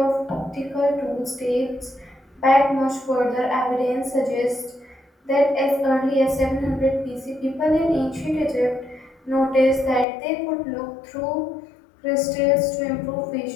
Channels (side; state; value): right; drops out; at 10.1 s